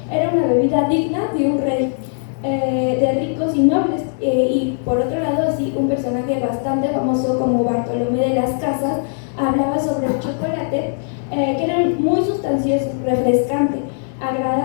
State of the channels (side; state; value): right; silent; digital silence